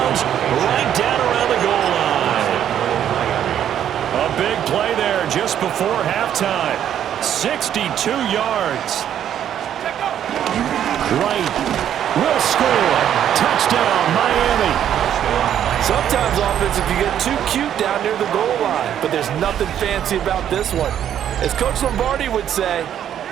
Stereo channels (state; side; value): quieter; left; 10.1 dB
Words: right down around the goal line. A big play there just before halftime. 62 yards. Right. Will score. Touchdown, Miami. Sometimes offense, if you get too cute down near the goal line, but there's nothing fancy about this one. As Coach Lombardi would say,